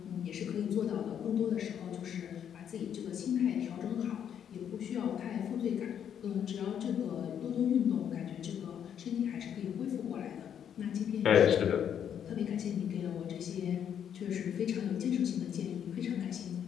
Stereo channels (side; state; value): right; quieter; 8.9 dB